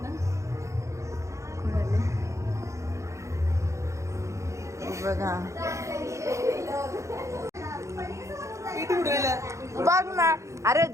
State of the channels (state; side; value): late; left; 0.15 ms